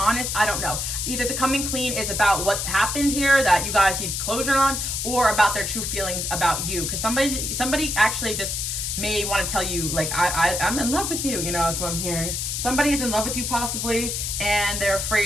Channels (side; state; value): left; noise; hiss, 2 dB below the sound